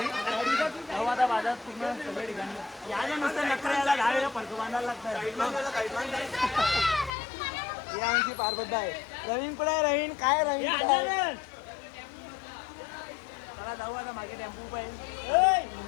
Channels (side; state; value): right; drops out; at 7.1 s